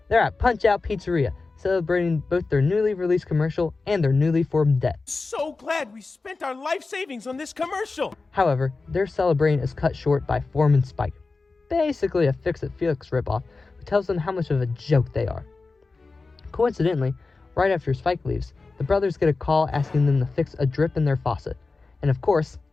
They're at Punch-Out Pizzeria, celebrating both their newly released commercial and their newly formed debt. So glad we spent our life savings on this commercial. However, their celebrating is cut short by Foreman Spike, basically a Fix-It-Felix ripoff who tells them how much of a joke they are. Coincidentally, right after Spike leaves, the brothers get a call asking them to fix a drip in their faucet. And of course,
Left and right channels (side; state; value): right; quieter; 3.9 dB